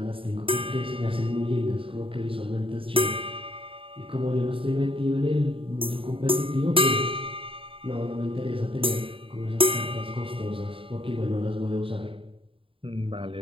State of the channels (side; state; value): left; late; 0.26 ms